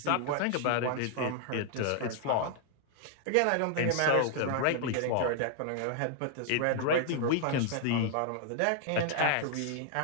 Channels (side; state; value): both; different; correlation 0.00